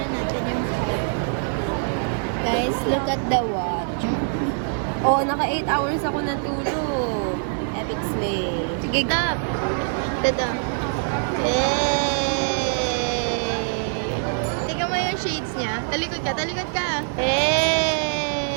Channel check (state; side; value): silent; left; 62 dB below the other